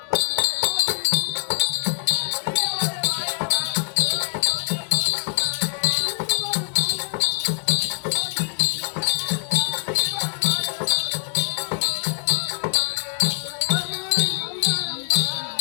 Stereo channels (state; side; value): silent; right; 63 dB below the other